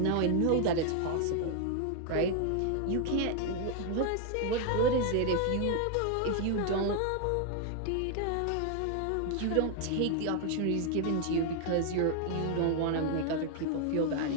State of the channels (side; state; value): both; different; correlation 0.01